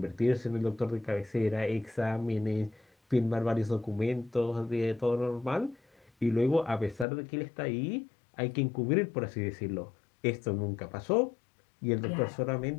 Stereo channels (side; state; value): right; drops out; at 7.1 s